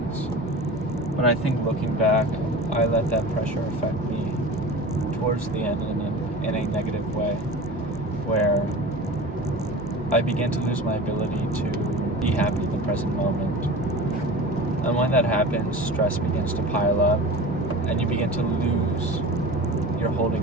But I think looking back, I let that pressure affect me towards the end in a negative way, where I began to lose my ability to be happy in the present moment. And when that happens, stress begins to pile up, and you begin to lose your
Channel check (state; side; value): normal; both; correlation 0.34